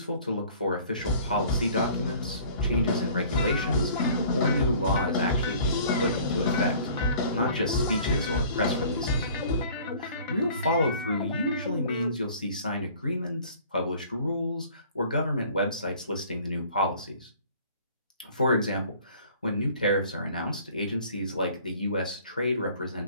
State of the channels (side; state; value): both; inverted; correlation -0.51